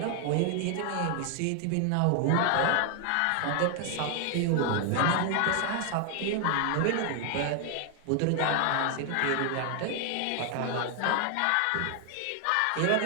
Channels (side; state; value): both; different; correlation 0.00